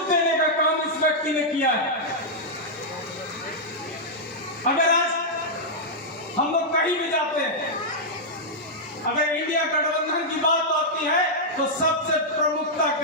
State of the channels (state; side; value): normal; both; correlation -0.07